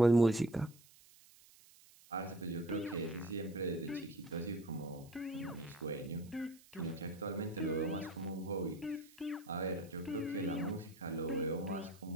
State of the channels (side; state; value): right; noise; hiss, 24 dB below the sound